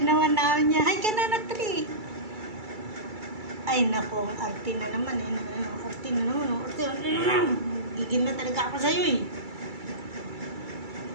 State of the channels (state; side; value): late; left; 2.3 ms